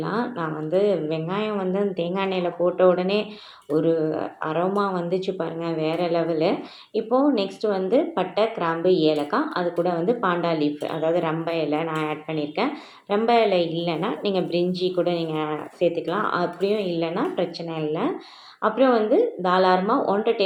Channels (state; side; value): identical; both; correlation 1.00